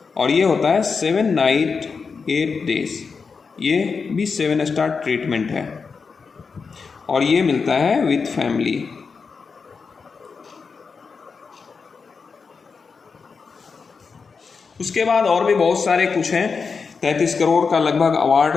और ये होता है 7 नाइट 8 डेज। ये भी 7 स्टार ट्रीटमेंट है, और ये मिलता है विथ फैमिली। उसके बाद और भी बहुत सारे कुछ हैं, 33 करोड़ का लगभग अवार्ड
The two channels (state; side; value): quieter; right; 5.2 dB